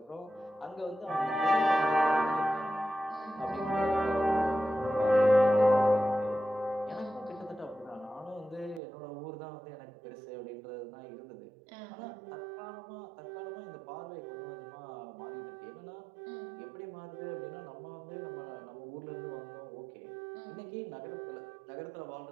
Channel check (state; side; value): drops out; left; at 8.8 s